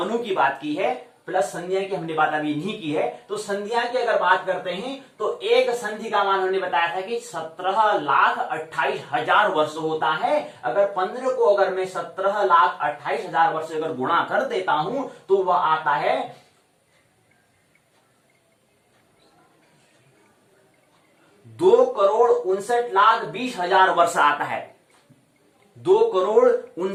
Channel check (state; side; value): identical; both; correlation 1.00